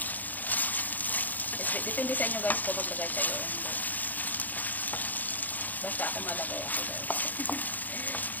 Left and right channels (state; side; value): late; right; 0.083 ms